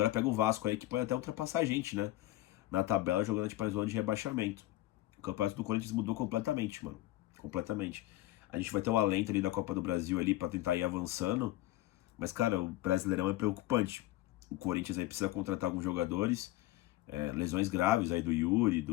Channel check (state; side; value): quieter; right; 16.5 dB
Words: pega o Vasco aí, que pode até ultrapassar a gente, né? Na tabela, jogando tipo, a zona de rebaixamento. O campeonato do Corinthians mudou completamente, mano. Completamente. A gente vai ter o alento ali da Copa do Brasil ali pra tentar ir avançando, mas, cara, o Brasileirão é preocupante. O Corinthians aí precisa contratar alguns jogadores, lesões graves aí do Yuri,